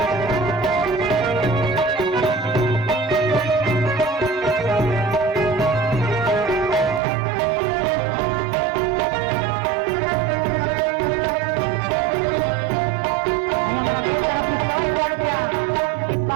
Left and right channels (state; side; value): drops out; left; at 7.0 s